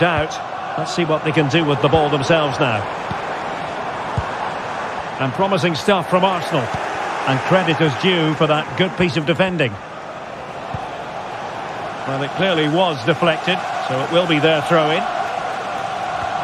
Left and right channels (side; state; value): both; identical; correlation 1.00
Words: Let's see what they can do with the ball themselves now. And promising stuff from Arsenal. And credit is due for that good piece of defending. Well, it clearly was deflected, so it will be their throw-in.